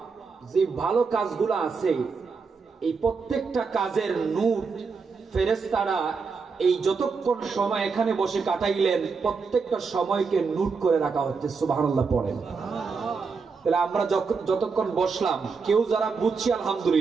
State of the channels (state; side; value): quieter; left; 5.0 dB